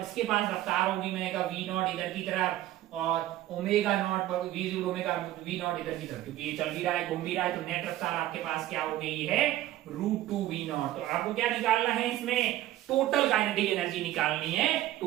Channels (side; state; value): left; quieter; 14.4 dB